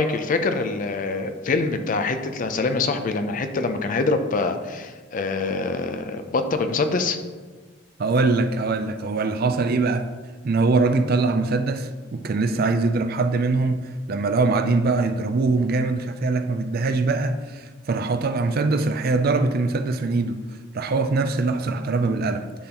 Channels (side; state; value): both; normal; correlation 0.47